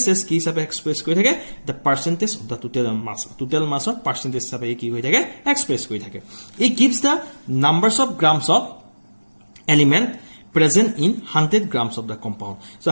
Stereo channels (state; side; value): inverted; both; correlation -1.00